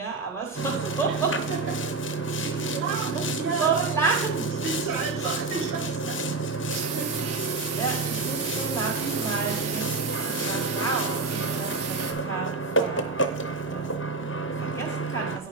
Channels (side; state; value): left; quieter; 3.8 dB